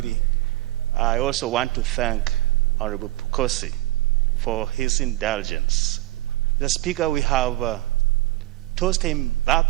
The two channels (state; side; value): quieter; left; 17.4 dB